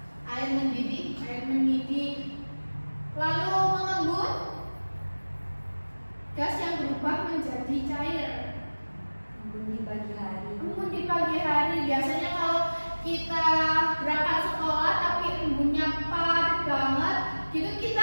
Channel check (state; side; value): inverted; both; correlation -1.00